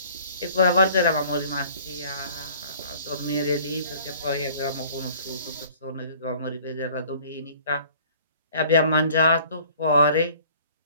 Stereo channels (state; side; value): inverted; both; correlation -0.52